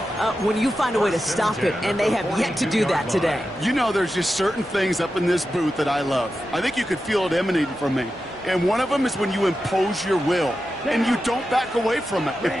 when you find a way to stop it, and they have yet to do that today. You know, there's just certain things up in this booth that I love. I think you could feel it emanating from me. And one of them is when you impose your will, and you don't back away from it. If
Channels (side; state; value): both; normal; correlation 0.91